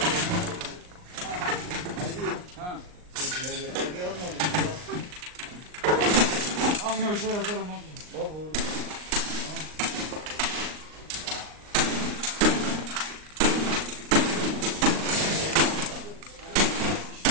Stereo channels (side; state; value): left; late; 39 ms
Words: Ha. Abi ne bir şey yazarım abi.